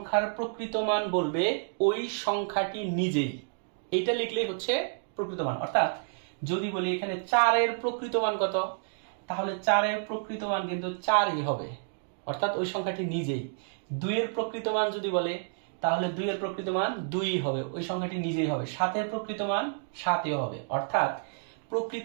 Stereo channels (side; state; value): left; silent; digital silence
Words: প্রকৃত মান বলবে ওই সংখ্যাটি নিজেই। এইটা লিখলেই হচ্ছে প্রকৃত মান। অর্থাৎ যদি বলি এখানে 4 এর প্রকৃত মান কত, তাহলে 4 এর প্রকৃত মান কিন্তু 4ই হবে, অর্থাৎ ওই সংখ্যাটি নিজেই। 2 এর প্রকৃত মান যদি বলে, তাহলে 2 এর প্রকৃত মান 2ই হবে, ওই সংখ্যাটি নিজেই হবে। 7 এর প্রকৃত মান 7ই হবে। অর্থাৎ